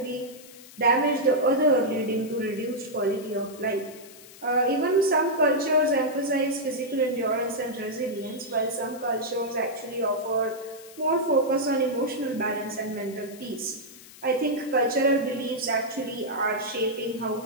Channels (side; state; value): left; noise; hiss, 19 dB below the sound